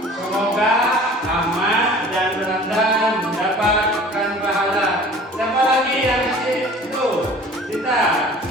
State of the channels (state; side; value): normal; both; correlation 0.46